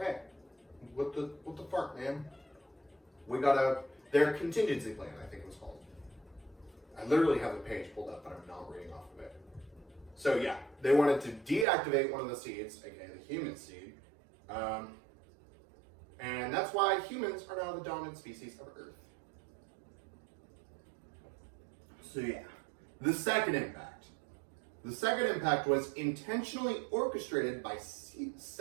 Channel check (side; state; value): left; drops out; at 11.7 s